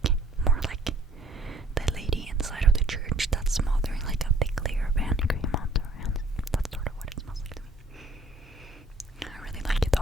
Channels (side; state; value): both; normal; correlation 0.57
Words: more like the lady inside of the church that's smothering like a thick layer of hand cream onto her hands. That's sort of what it smells like to me. I really like it